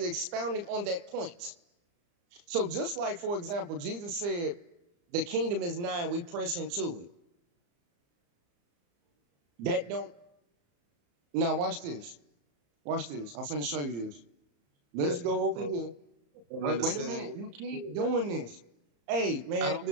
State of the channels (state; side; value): late; left; 35 ms